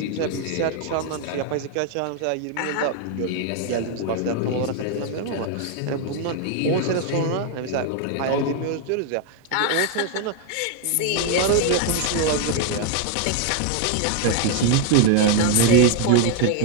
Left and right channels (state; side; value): different; both; correlation 0.00